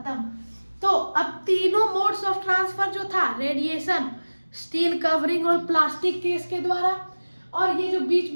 तो अब तीनों मोड्स ऑफ ट्रांसफर जो था, रेडिएशन, स्टील कवरिंग और प्लास्टिक केस के द्वारा, और ये जो बीच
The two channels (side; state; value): both; inverted; correlation -1.00